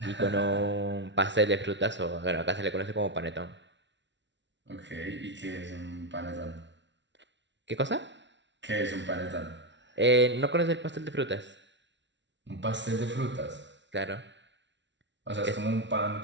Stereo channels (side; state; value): left; late; 0.52 ms